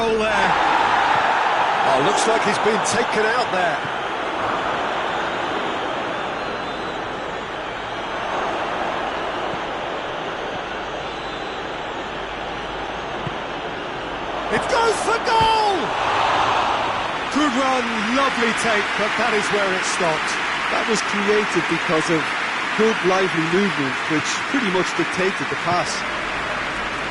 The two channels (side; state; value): both; identical; correlation 1.00